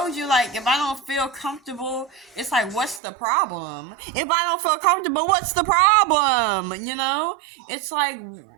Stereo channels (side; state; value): left; drops out; at 3.0 s